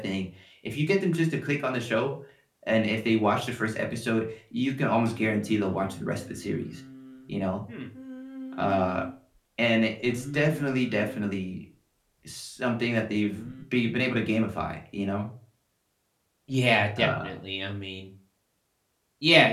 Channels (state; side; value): identical; both; correlation 1.00